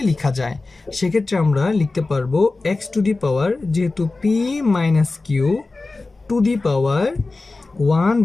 লেখা যায়। সেক্ষেত্রে আমরা লিখতে পারবো x টু দি পাওয়ার, যেহেতু p minus q to the power 1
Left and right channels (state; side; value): quieter; right; 3.5 dB